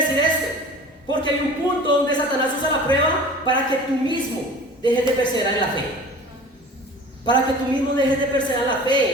decir esto? Porque hay un punto donde Satanás usa la prueba para que tú mismo dejes de perseverar en la fe. Para que tú mismo dejes de perseverar en la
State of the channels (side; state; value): both; normal; correlation 0.41